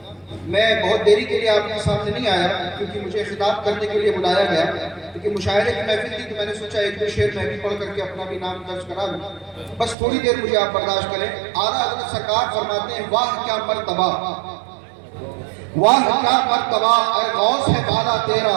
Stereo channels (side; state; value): left; drops out; at 10.0 s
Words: میں بہت دیری کے لیے آپ کے سامنے نہیں آیا کیونکہ مجھے خطاب کرنے کے لیے بلایا گیا، کیونکہ مشاعرے کی محفل تھی تو میں نے سوچا ایک دو شعر میں بھی پڑھ کر کے اپنا بھی نام درج کرا لوں. بس تھوڑی دیر مجھے آپ برداشت کریں. اعلیٰ حضرت سرکار فرماتے ہیں، واہ کیا مرتبہ، واہ کیا مرتبہ، اے غوث ہے بالا تیرا،